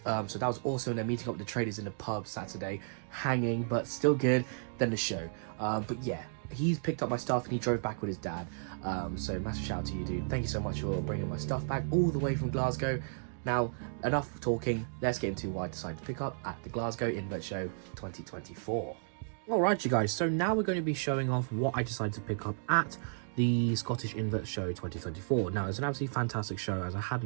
So that was awesome, and then meeting up with the traders in the pub Saturday, hanging, but still good. Then the show. But yeah, he's picked up my stuff and he drove back with his dad. So massive shout out to you, dude. Thank you so much for bringing my stuff back all the way from Glasgow. Now, enough talking. Let's get into what I decided to pick up at the Glasgow Invert Show 2024. Alright, you guys, so now we're going to be showing off what I decided to pick up at the Scottish Invert Show 2024. Now, it's an absolutely fantastic show, as I had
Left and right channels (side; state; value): left; silent; digital silence